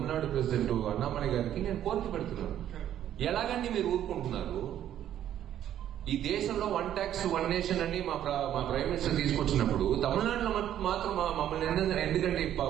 ప్రెసిడెంట్ అన్నామలై గారికి నేను కోరిక పెడుతున్నాను. ఎలాగండి మీరు ఊరుకుంటున్నారు? ఈ దేశంలో 1 ట్యాక్స్ 1 నేషన్ అని మా ప్రైమ్ మినిస్టర్ తీసుకొచ్చినప్పుడు తమిళనాడులో మాత్రం మమ్మల్ని ఎందుకంటే 18%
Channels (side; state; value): left; quieter; 11.1 dB